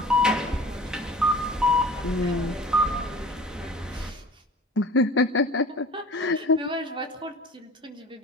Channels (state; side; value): normal; both; correlation 0.42